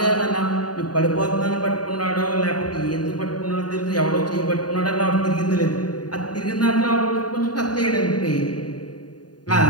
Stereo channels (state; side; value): late; right; 0.69 ms